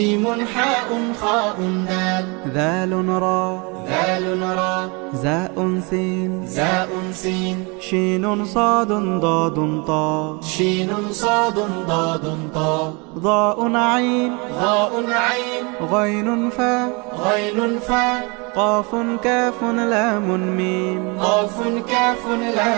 حاء خاء دال ذال را ذال را زاء سين زاء سين شين صاد ضاد طاء شين صاد ضاد طاء ضاء عين ضاء عين غين فاء غين فاء قاف كاف لام ميم قاف كاف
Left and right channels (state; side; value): quieter; left; 29.8 dB